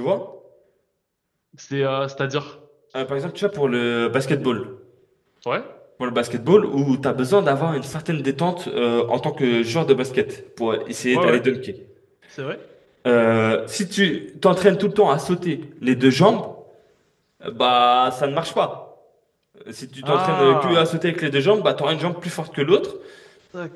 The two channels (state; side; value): identical; both; correlation 1.00